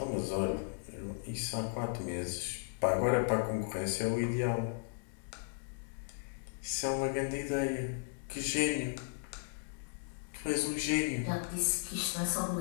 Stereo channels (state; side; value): silent; right; digital silence